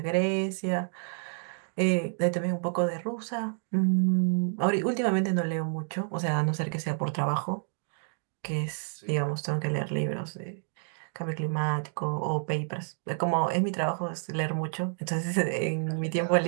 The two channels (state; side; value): silent; left; 58 dB below the other